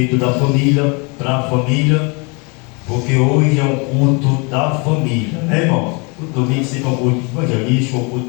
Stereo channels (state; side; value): quieter; right; 31.2 dB